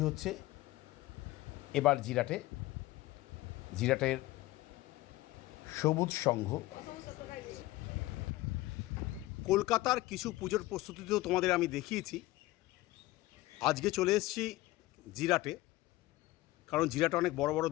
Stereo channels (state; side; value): quieter; right; 18.0 dB